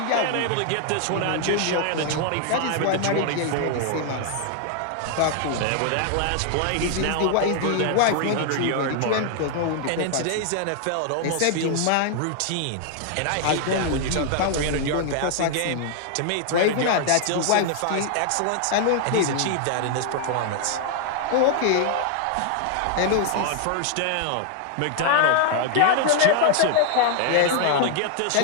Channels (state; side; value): different; both; correlation 0.00